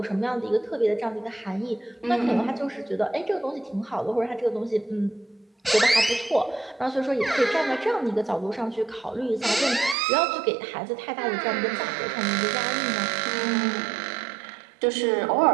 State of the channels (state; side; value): drops out; left; at 10.0 s